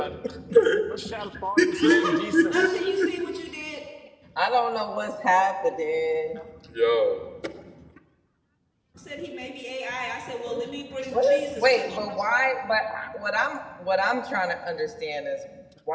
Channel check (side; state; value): both; identical; correlation 1.00